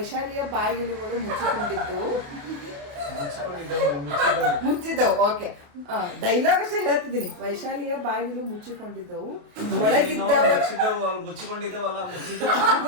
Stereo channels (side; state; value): left; late; 28 ms